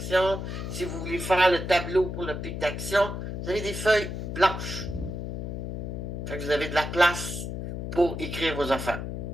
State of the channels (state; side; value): noise; left; hum, 5 dB below the sound